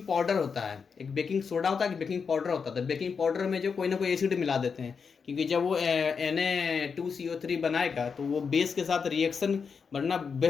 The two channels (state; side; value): quieter; right; 5.8 dB